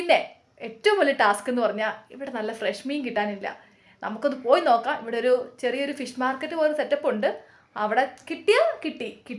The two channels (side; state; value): both; identical; correlation 1.00